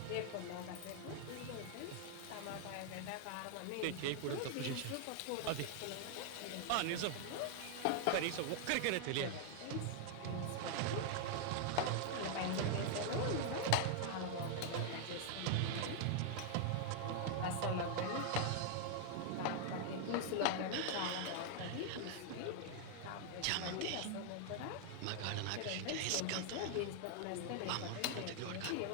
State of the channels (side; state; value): both; different; correlation 0.00